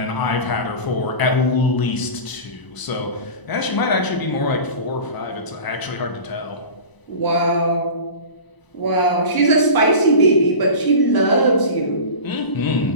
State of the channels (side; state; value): right; late; 1.0 ms